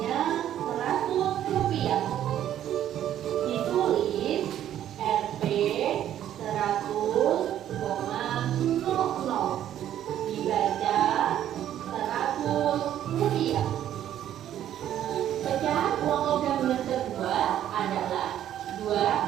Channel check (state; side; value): quieter; left; 11.2 dB